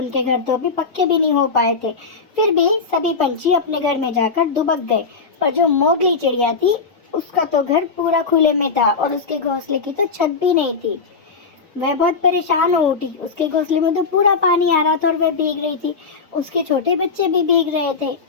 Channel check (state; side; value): quieter; right; 4.8 dB